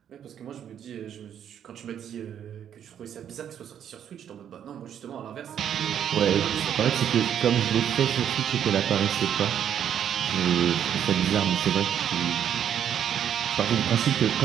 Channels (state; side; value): quieter; left; 9.3 dB